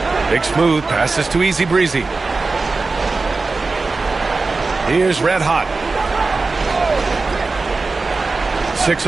Big Smooth passes to Easy Breezy. Here's Red Hot. 6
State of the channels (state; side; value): quieter; left; 3.8 dB